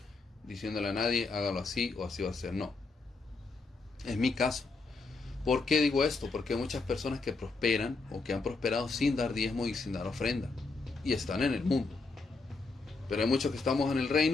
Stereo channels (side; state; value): right; quieter; 3.9 dB